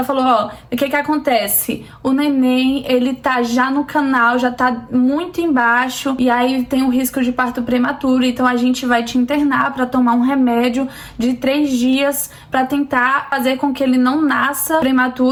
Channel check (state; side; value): identical; both; correlation 1.00